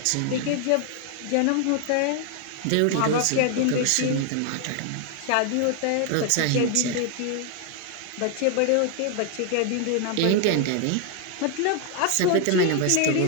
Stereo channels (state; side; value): different; both; correlation 0.00